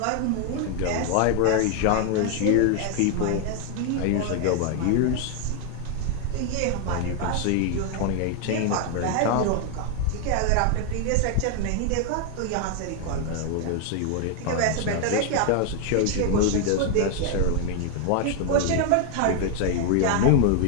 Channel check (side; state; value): both; different; correlation 0.00